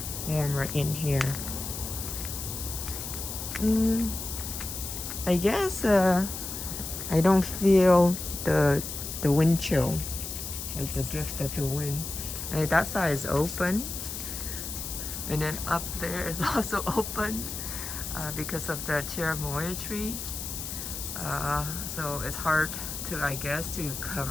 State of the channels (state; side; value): noise; left; hiss, 6 dB below the sound